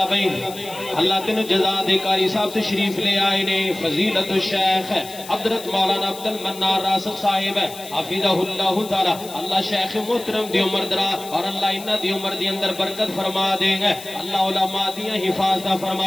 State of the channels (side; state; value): left; noise; hiss, 15 dB below the sound